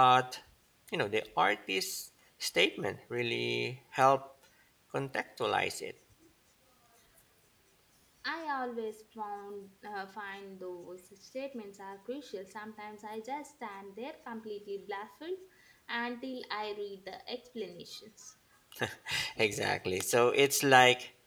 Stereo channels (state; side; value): identical; both; correlation 1.00